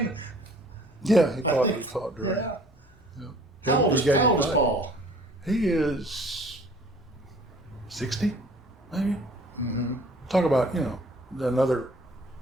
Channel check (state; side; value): normal; both; correlation 0.52